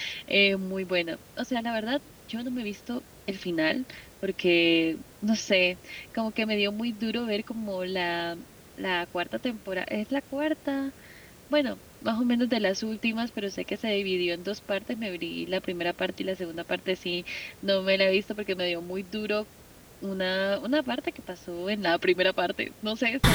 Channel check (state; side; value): identical; both; correlation 1.00